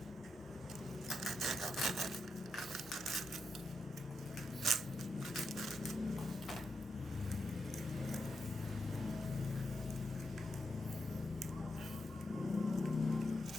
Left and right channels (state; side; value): normal; both; correlation 0.85